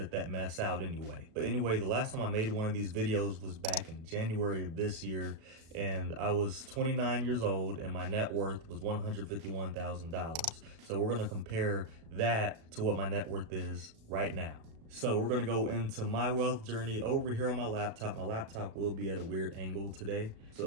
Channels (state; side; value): late; left; 36 ms